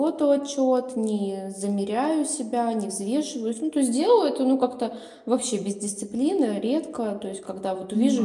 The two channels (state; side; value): identical; both; correlation 1.00